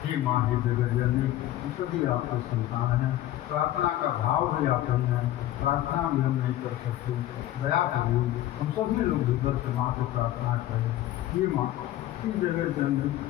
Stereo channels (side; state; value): right; quieter; 13.9 dB